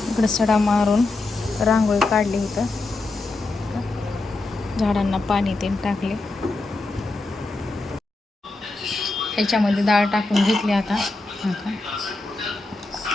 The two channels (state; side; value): quieter; right; 3.2 dB